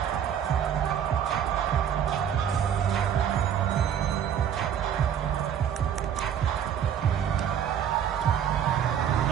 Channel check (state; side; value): quieter; left; 9.0 dB